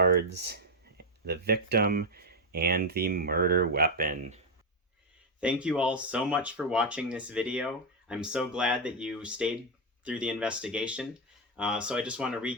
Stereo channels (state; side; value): normal; both; correlation 0.04